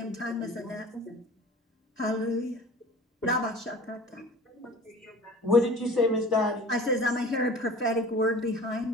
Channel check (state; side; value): normal; both; correlation 0.42